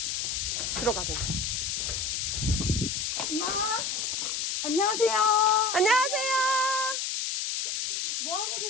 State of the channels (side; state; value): left; noise; hiss, 1 dB below the sound